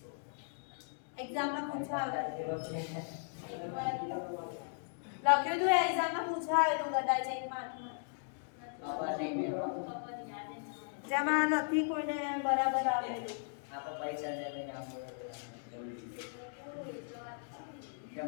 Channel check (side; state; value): right; silent; digital silence